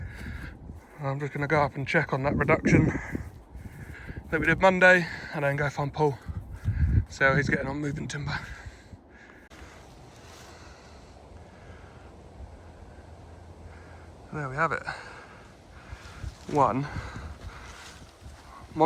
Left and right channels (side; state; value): both; identical; correlation 1.00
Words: I'm just going to go up and check on that reduction that we did Monday, and then go find Paul, see how he's getting on moving timber. There we have it. One